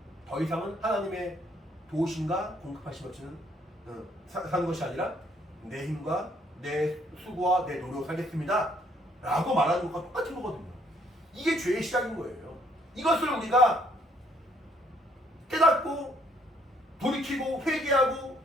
더 이상은 하나님의 도우심과 공급하심 없이는 사는 것이 아니라 내 힘과 내 수고와 내 노력을 살겠습니다 라고 말하는 것과 똑같은 거거든요. 이게 죄의 시작인 거예요. 이것을 우리가 깨닫고 돌이키고 회개하고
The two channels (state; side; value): normal; both; correlation 0.67